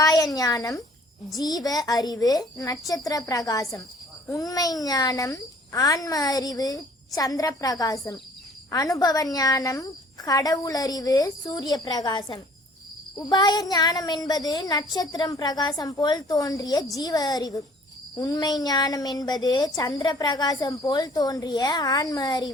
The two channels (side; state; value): both; normal; correlation 0.54